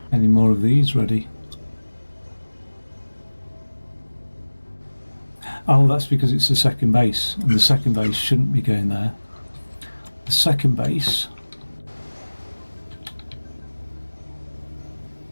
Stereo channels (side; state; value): both; inverted; correlation -1.00